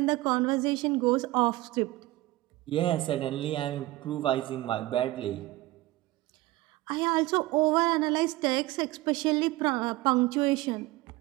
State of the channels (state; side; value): quieter; left; 18.4 dB